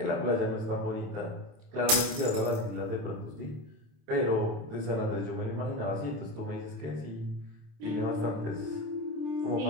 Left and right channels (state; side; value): late; left; 27 ms